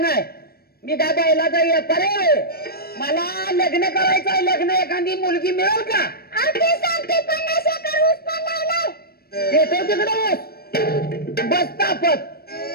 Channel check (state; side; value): late; right; 0.44 ms